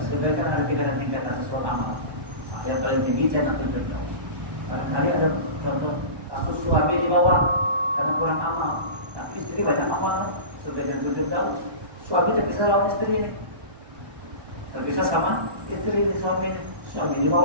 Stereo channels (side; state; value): left; late; 1.1 ms